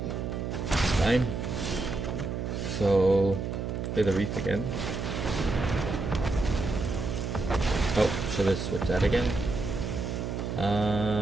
fine. So, play the Reef again. Oh, should have switched that again.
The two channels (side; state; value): right; noise; hum, 3 dB below the sound